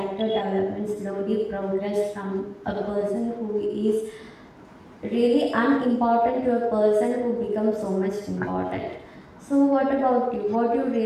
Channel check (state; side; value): identical; both; correlation 1.00